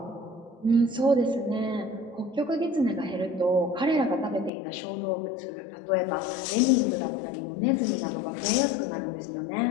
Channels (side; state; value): right; drops out; at 4.5 s